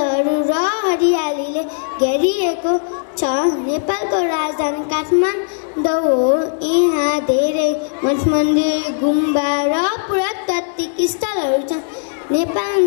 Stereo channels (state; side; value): silent; right; 67 dB below the other